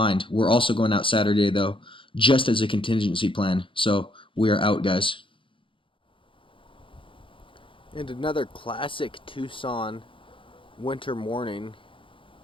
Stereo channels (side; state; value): right; late; 0.25 ms